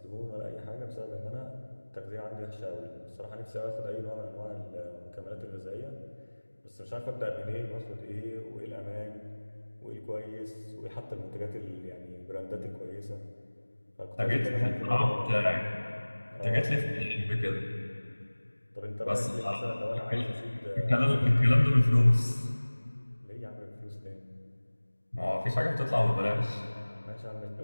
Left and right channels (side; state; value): both; inverted; correlation -1.00